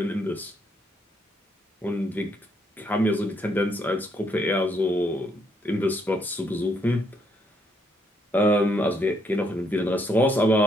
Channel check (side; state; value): both; normal; correlation 0.73